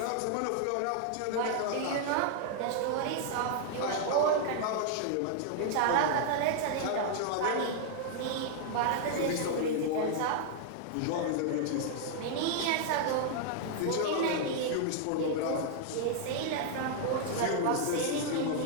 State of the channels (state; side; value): different; both; correlation -0.01